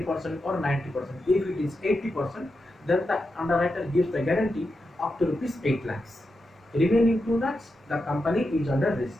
or 90%. If it is 80%, then the underwriter gives the guarantee up to rupees 8 lakhs. Remaining 2 lakhs, the company is under risk.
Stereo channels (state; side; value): normal; both; correlation 0.88